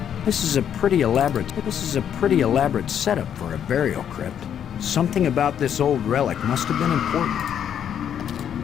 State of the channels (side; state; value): right; quieter; 9.1 dB